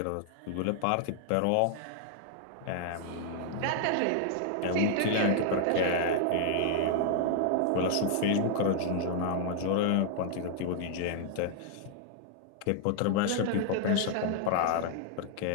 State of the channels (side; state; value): both; different; correlation -0.01